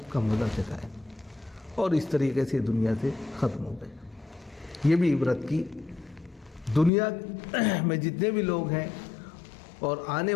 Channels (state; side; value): drops out; right; at 6.9 s